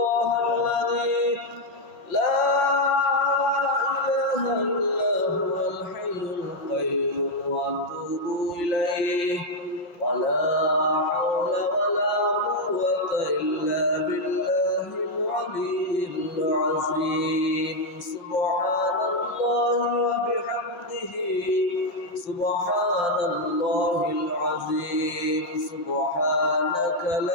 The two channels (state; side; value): late; right; 5.7 ms